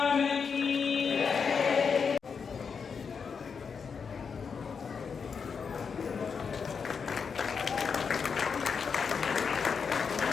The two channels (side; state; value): right; quieter; 6.0 dB